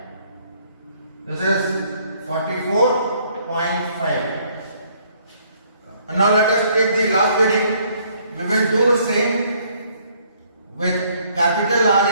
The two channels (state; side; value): inverted; both; correlation -0.64